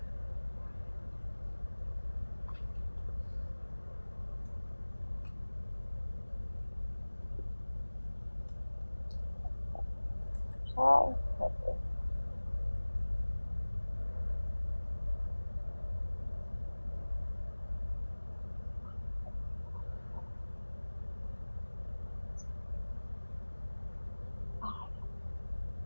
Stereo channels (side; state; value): both; inverted; correlation -1.00